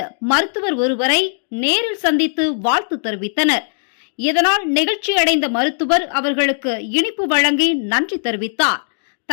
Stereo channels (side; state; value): right; silent; digital silence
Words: மருத்துவர் ஒருவரை நேரில் சந்தித்து வாழ்த்து தெரிவித்தனர். இதனால் நெகிழ்ச்சி அடைந்த மருத்துவர் அவர்களுக்கு இனிப்பு வழங்கி நன்றி தெரிவித்தார்.